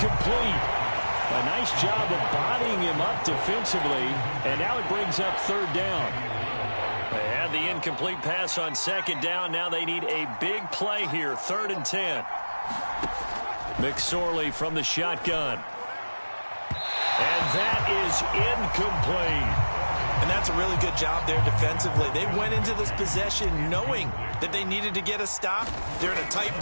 A nice job of bodying him up defensively, and now it brings up 3rd down. They had the incomplete pass on 2nd down. Now they need a big play here, 3rd and 10. McSorley from the shotgun. And that is incomplete. And that's a really good job there defensively. They went into this possession knowing that they needed to get a stop. They're in a tight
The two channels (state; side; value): inverted; both; correlation -1.00